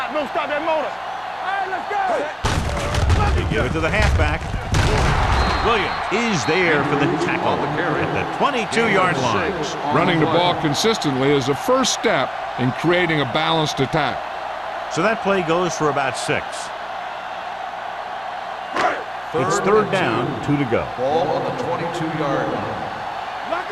Don't stop that motor. All right, let's go. They give it to the halfback. Williams is there for the tackle at the 22-yard line. Running the ball consistently is the first step in creating a balanced attack. So that play goes for about 6. It's 3rd down, 2 to go. Ball on the 22-yard line. Lock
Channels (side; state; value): both; identical; correlation 1.00